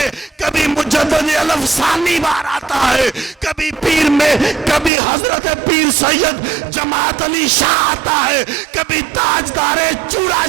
کبھی مجدد الافسانی بار آتا ہے، کبھی پیر میں، کبھی حضرت پیر سید جماعت علی شاہ آتا ہے، کبھی تاجدار چورا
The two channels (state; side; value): drops out; left; at 4.9 s